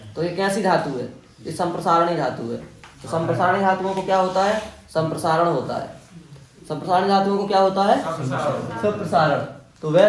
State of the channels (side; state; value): both; identical; correlation 1.00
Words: तो ये कैसी धातु है? ये संप्रसारणी धातु है। तो संप्रसारणी धातुओं को क्या होता है? संप्रसारण होता है। संप्रसारणी धातुओं को क्या होता है? संप्रसारण। तो वह